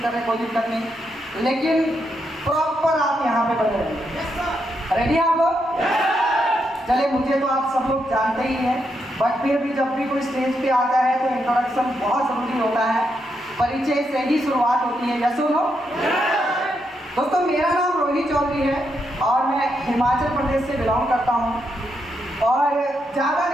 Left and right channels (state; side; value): normal; both; correlation 0.81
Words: कर रहे हैं कोई दिक्कत नहीं, लेकिन प्रॉपर आप यहाँ पे बने रहेंगे। रेडी आप लोग? चले, मुझे तो आप सब लोग जानते ही हैं, बट फिर भी जब भी कोई स्टेज पे आता है तो इंट्रोडक्शन बहुत ज़रूरी होता है। परिचय से ही शुरुआत होती है। यस और नो? दोस्तों, मेरा नाम रोहित चौधरी है और मैं हिमाचल प्रदेश से बिलोंग करता हूँ। और ज़्यादा